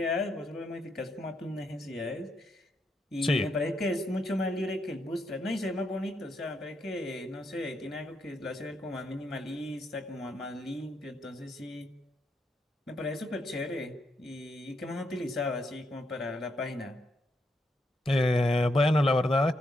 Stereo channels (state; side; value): normal; both; correlation 0.79